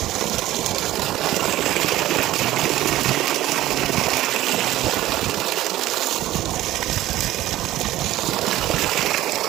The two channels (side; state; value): left; quieter; 15.1 dB